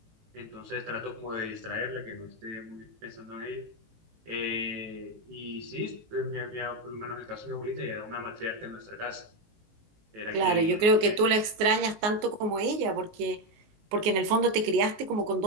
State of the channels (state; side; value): late; left; 19 ms